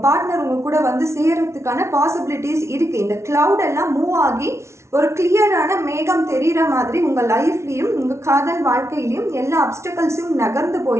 பார்ட்னர் உங்க கூட சேர்றதுக்கான பாசிபிலிட்டிஸ் இருக்கு. இந்த கிளவுட் எல்லாம் மூவ் ஆகி ஒரு கிளியரான மேகம் தெரிகிற மாதிரி உங்கள் லைஃப்லையும் உங்கள் காதல் வாழ்க்கையிலையும் எல்லா அப்டக்கல்ஸும் நகர்ந்து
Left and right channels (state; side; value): late; left; 0.13 ms